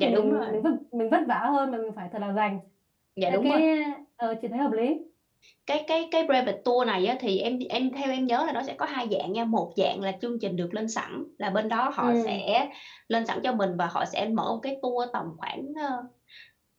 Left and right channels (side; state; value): both; identical; correlation 1.00